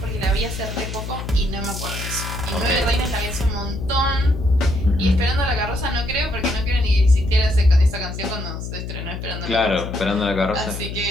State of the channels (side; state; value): left; noise; hum, 7 dB below the sound